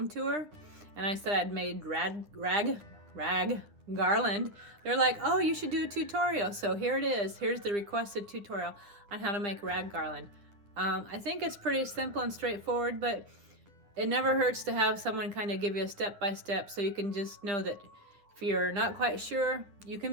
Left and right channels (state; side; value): late; left; 9.8 ms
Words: tour, and I said I'd made rag garland. They're like, oh, you should do a tutorial. So here it is. Here's the requested tutorial on how to make rag garland. I think it's pretty simple and straightforward, but it never hurts to have someone kind of give you a step-by-step so you can just know that if you're not quite sure, you